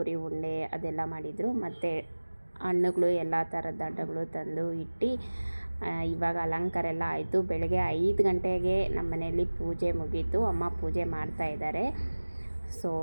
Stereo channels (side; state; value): both; inverted; correlation -1.00